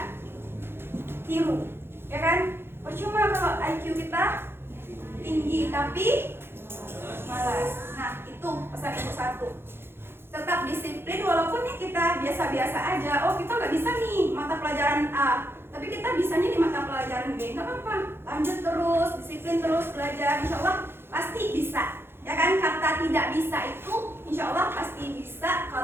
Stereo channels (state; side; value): late; left; 0.11 ms